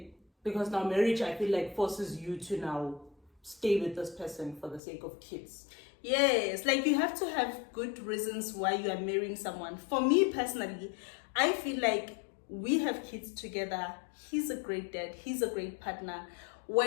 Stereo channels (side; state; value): right; drops out; at 4.8 s